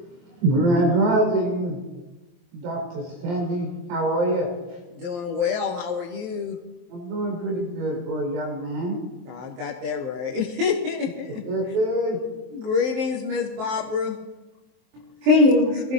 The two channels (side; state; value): left; late; 23 ms